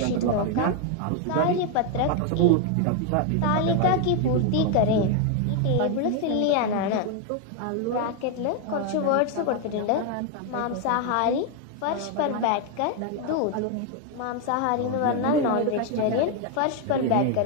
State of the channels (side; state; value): both; different; correlation 0.01